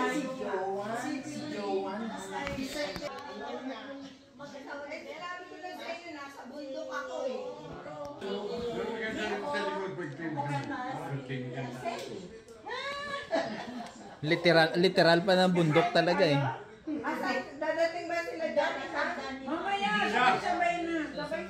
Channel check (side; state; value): both; identical; correlation 1.00